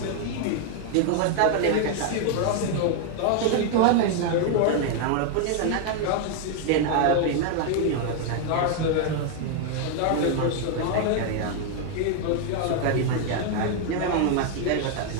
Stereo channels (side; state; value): both; different; correlation 0.00